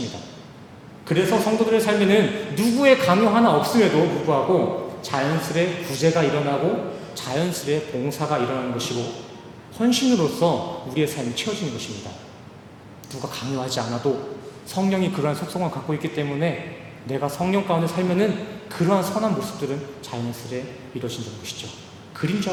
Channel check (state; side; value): identical; both; correlation 1.00